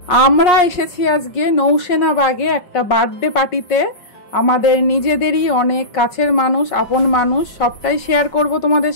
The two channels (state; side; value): late; right; 5.5 ms